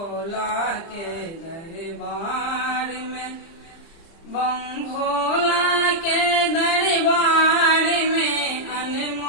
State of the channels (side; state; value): right; late; 30 ms